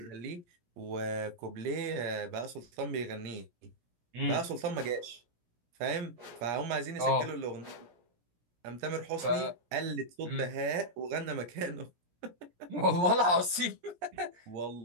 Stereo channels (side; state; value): left; late; 17 ms